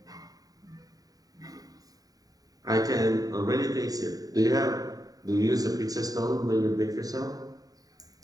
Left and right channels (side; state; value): left; late; 0.18 ms